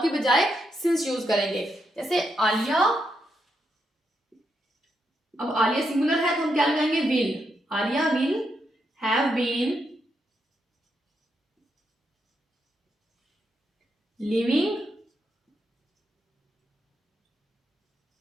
की बजाय सिंस यूज करेंगे। जैसे आलिया, अब आलिया सिंगुलर है तो हम क्या लगाएंगे, will. Alia will have been living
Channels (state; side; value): normal; both; correlation 0.81